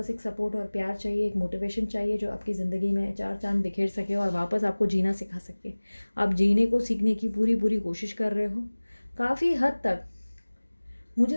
एक सपोर्ट और प्यार चाहिए, एक मोटिवेशन चाहिए जो आपकी ज़िंदगी में चार चांद बिखेर सके और वापस आपको जीना सिखा सके। आप जीने को सीखने की पूरी कोशिश कर रहे हो। काफ़ी हद तक मुझे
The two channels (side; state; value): both; inverted; correlation -1.00